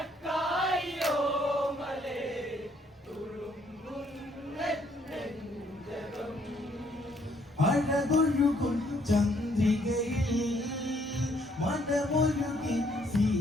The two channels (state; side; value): normal; both; correlation 0.68